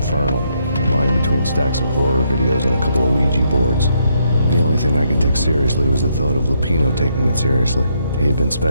lying between stacks of horror videos and a couple of Ouija boards. The only thing I could take seriously was the thought of Lupino taking it seriously. He had been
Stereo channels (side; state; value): both; inverted; correlation -0.75